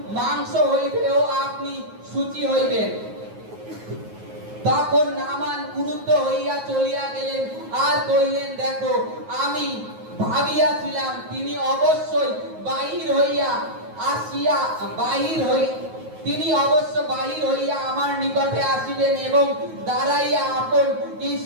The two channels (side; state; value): left; late; 9.4 ms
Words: মাংস হইবে ও আপনি শুচি হইবেন। তখন নামান ক্রুদ্ধ হইয়া চলিয়া গেলেন আর কইলেন, দেখো, আমি ভাবিয়াছিলাম তিনি অবশ্যই বাহির হইয়া আমার নিকটে আসিবেন এবং দাঁড়াইয়া আপন